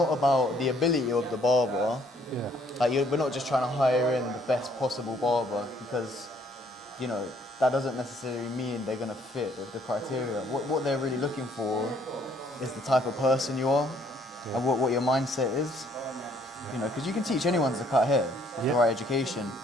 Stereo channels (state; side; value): normal; both; correlation 0.64